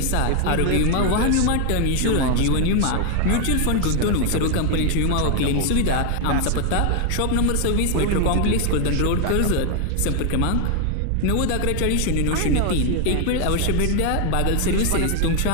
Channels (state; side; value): different; both; correlation 0.00